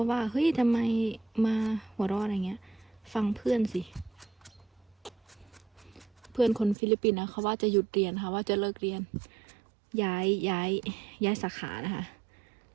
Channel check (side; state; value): left; drops out; at 6.8 s